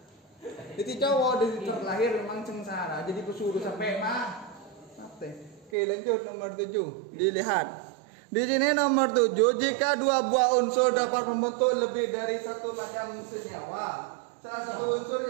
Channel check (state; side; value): drops out; left; at 5.7 s